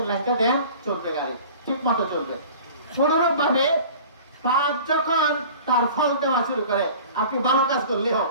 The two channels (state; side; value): inverted; both; correlation -0.43